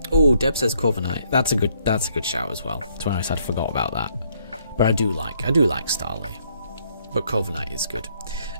Oh, Deb says Corviknight. That's a good shout as well. To be honest, I'd forgot about that. But I do like Starly. But Corviknight is good.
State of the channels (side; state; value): both; inverted; correlation -0.68